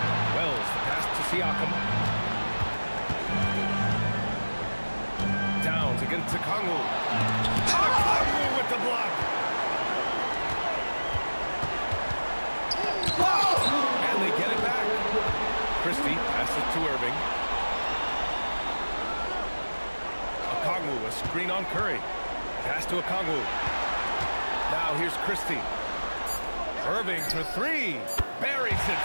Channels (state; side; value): inverted; both; correlation -1.00